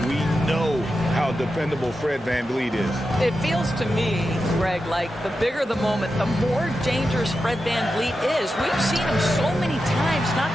we know how dependable Fred VanVleet is. It feels to me, Greg, like the bigger the moment, the more dangerous Fred VanVleet is. We've seen him so many times knock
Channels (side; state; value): both; normal; correlation 0.90